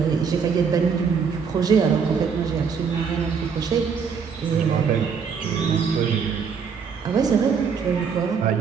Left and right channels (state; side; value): quieter; left; 6.2 dB